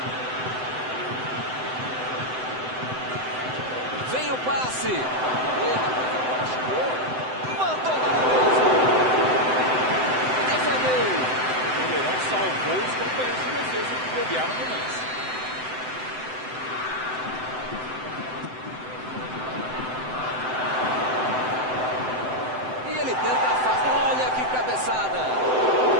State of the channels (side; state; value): left; late; 7.8 ms